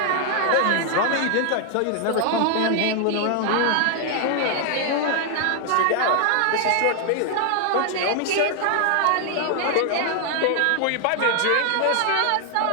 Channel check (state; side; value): different; both; correlation 0.00